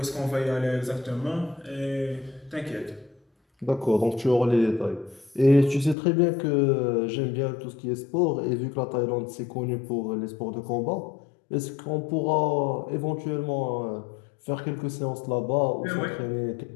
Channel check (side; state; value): right; drops out; at 6.0 s